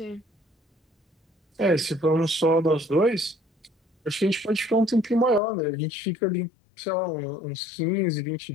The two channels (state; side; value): drops out; right; at 5.4 s